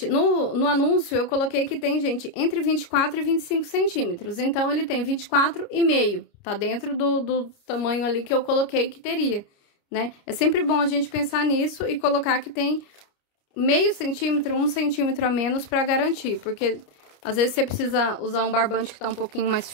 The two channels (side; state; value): right; late; 29 ms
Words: No anúncio eu coloquei que tem, gente, entre 24 e 25 centímetros. Então ele tem 24,5. Tá dentro do tamanho ali que eu coloquei que teria, né? É sempre bom a gente pensar nisso e colocar que tem meio centímetro, 1 centímetro a menos pra garantir, porque às vezes você precisa usar um barbante que tá um pouquinho mais